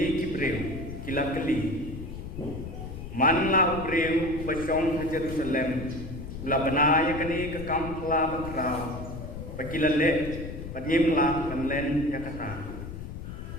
kibreu kilakeli. Manla ubreu pasong Jerusalem ula banaya kani ke kampla bakra pakilale padimla kanlen yakata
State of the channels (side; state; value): left; noise; rumble, 9 dB below the sound